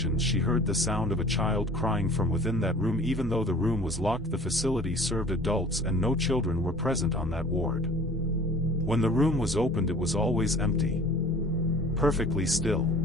she heard the sound of a child crying from within that room. Even though the room was locked, the facility served adults and no children were present on that ward. When the room was opened, it was always empty. Perfectly still.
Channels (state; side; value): normal; both; correlation 0.46